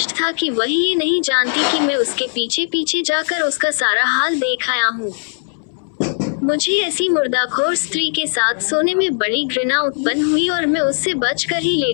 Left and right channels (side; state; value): right; silent; 58 dB below the other